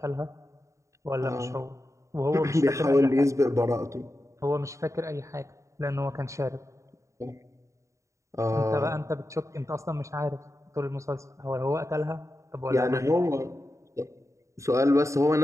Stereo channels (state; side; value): late; left; 0.15 ms